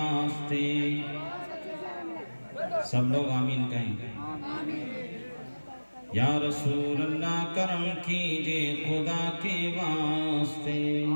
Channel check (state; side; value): inverted; both; correlation -1.00